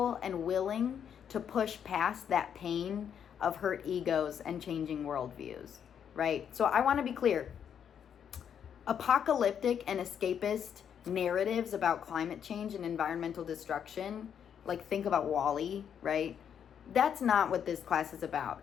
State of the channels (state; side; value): quieter; right; 8.3 dB